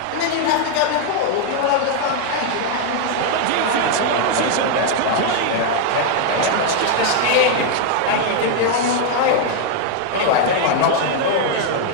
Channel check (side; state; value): both; different; correlation 0.00